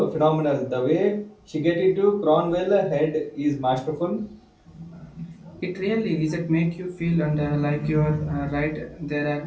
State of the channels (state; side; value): identical; both; correlation 1.00